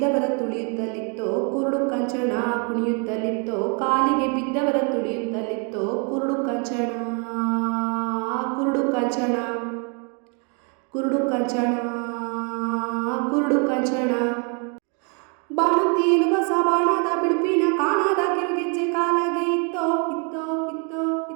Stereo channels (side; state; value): left; quieter; 36.5 dB